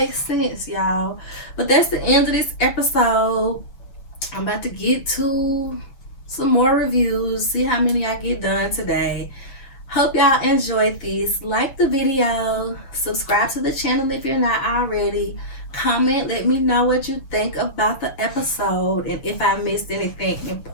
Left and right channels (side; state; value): right; late; 7.6 ms